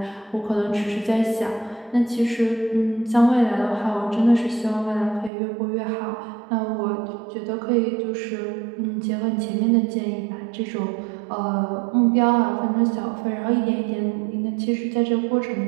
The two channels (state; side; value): drops out; left; at 5.3 s